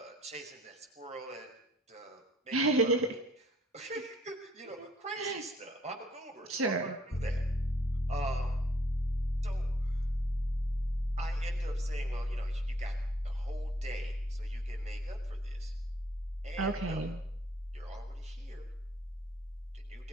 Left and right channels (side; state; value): both; normal; correlation 0.64